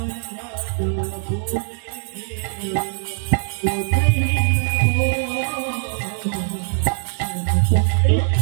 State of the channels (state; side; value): silent; left; digital silence